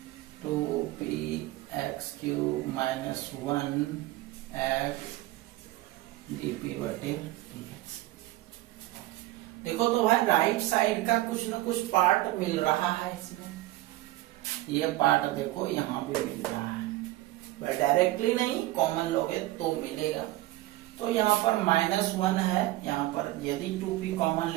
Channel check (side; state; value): left; quieter; 17.2 dB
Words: 2px³ minus 1x dp बटे dx। देखो तो भाई राइट साइड का कुछ न कुछ पार्ट मिल रहा है इसमें, ये पार्ट देखो यहाँ भी मिल रहा है, डायरेक्टली नहीं, कॉमन लोगे तो मिलेगा। तो यहाँ पर -1 है, यहाँ पर यदि 2p कॉमन